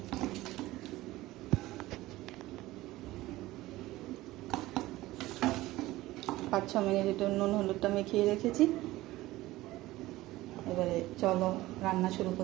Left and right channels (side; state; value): left; quieter; 17.6 dB